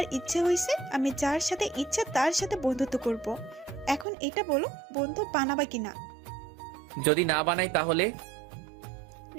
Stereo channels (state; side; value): drops out; left; at 4.0 s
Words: ইচ্ছে হয়েছে, আমি যার সাথে ইচ্ছা তার সাথে বন্ধুত্ব করব। এখন এটা বলো, বন্ধু বানাবা কিনা? যদি না বানাই তাহলে?